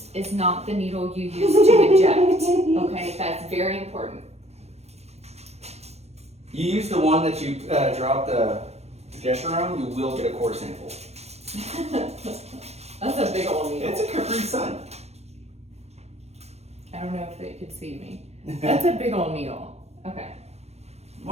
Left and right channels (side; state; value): left; late; 0.31 ms